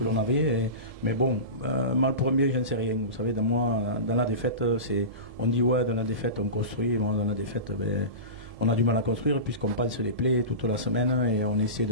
l'on avait. Mais bon, mal pour un bien, je ne sais rien. Vous savez, dans la défaite, on dit ouais, dans la défaite on construit. Bon, dans la défaite, on a du mal à construire, puisqu'on pense les plaies toute la semaine, et on essaie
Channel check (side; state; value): left; late; 1.7 ms